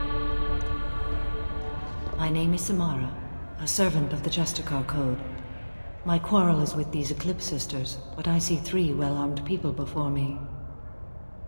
My name is Samara, a servant of the Justicar Code. My quarrel is with these Eclipse sisters, but I see 3 well-armed people before me.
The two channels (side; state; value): both; inverted; correlation -1.00